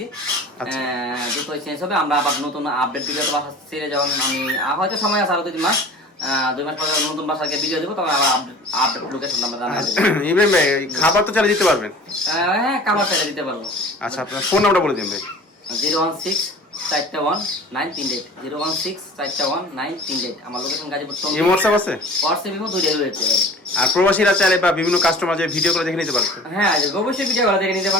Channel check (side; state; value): both; normal; correlation 0.42